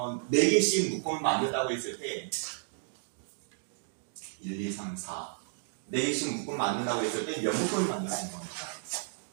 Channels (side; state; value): left; silent; digital silence